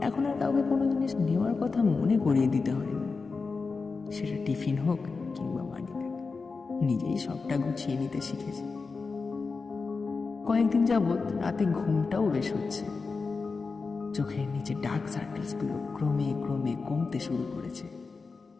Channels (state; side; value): quieter; right; 4.4 dB